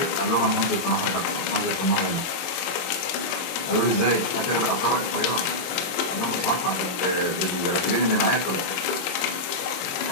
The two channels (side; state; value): right; late; 23 ms